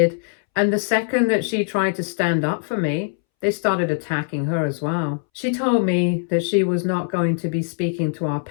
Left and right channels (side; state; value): right; silent; 64 dB below the other